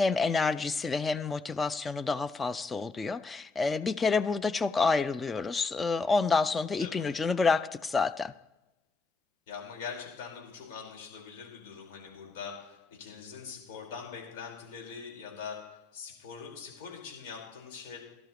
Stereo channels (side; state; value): right; quieter; 4.0 dB